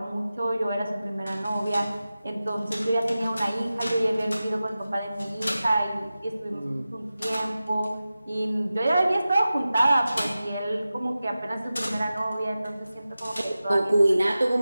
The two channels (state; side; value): inverted; both; correlation -0.94